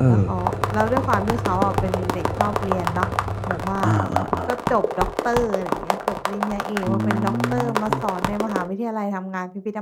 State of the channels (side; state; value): both; identical; correlation 1.00